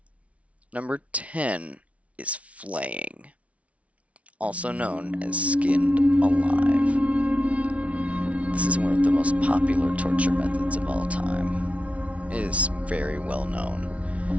Number 10 is flaying, also known as skinned alive. This is one of the most popular torture methods of all time. It is very well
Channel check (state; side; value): late; left; 0.065 ms